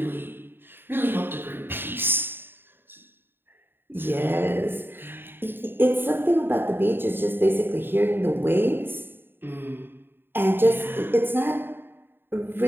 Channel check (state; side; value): late; left; 0.099 ms